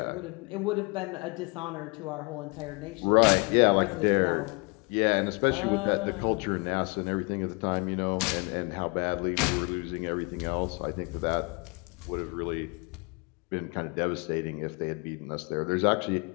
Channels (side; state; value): right; quieter; 30.7 dB